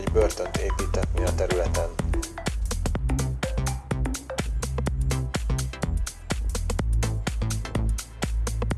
börtönt építetni a területen.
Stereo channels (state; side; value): identical; both; correlation 1.00